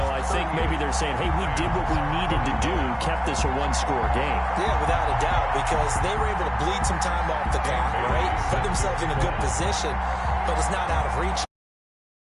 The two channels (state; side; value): identical; both; correlation 1.00